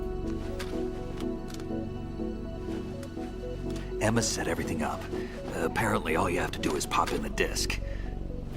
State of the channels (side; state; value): both; identical; correlation 1.00